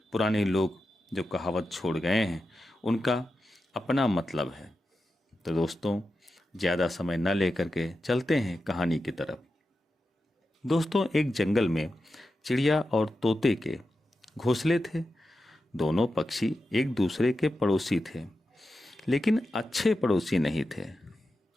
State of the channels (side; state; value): both; normal; correlation 0.90